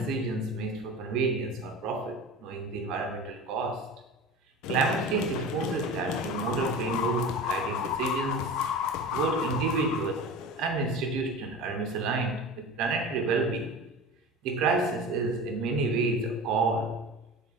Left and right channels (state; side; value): normal; both; correlation 0.33